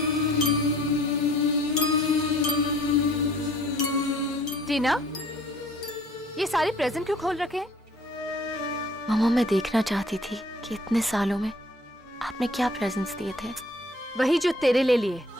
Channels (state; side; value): normal; both; correlation 0.56